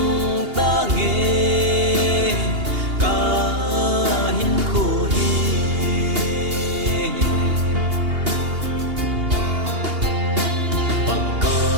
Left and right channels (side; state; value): left; late; 2.8 ms